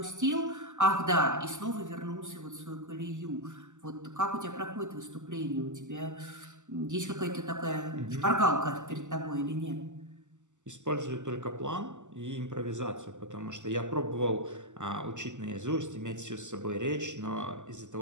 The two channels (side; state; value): left; late; 0.85 ms